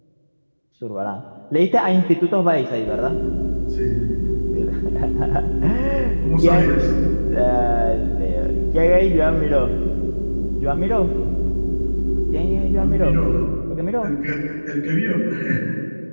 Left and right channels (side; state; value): both; inverted; correlation -1.00